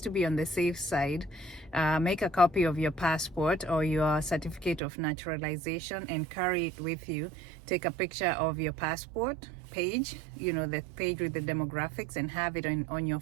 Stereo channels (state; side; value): drops out; left; at 4.8 s